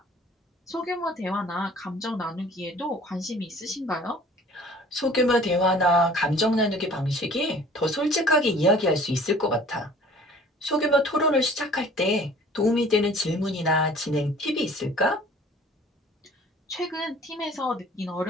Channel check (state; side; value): normal; both; correlation 0.49